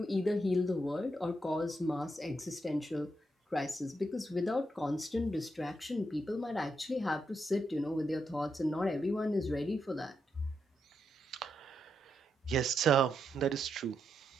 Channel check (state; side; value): normal; both; correlation 0.82